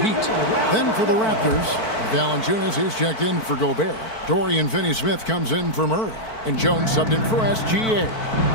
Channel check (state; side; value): late; right; 4.5 ms